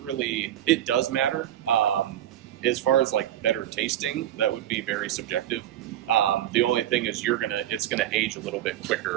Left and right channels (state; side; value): quieter; left; 12.2 dB